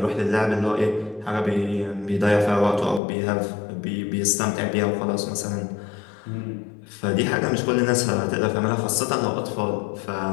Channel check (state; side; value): drops out; right; at 3.0 s